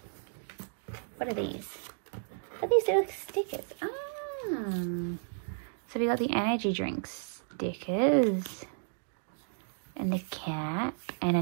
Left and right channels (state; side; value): silent; left; digital silence